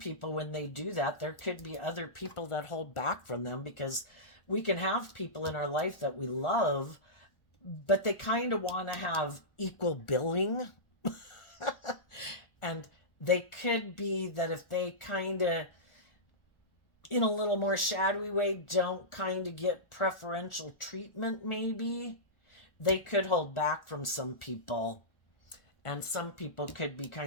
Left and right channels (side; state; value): right; late; 1.4 ms